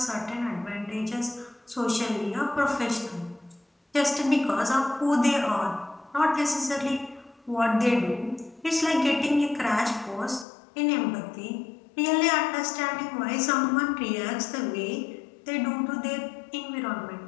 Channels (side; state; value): right; drops out; at 10.5 s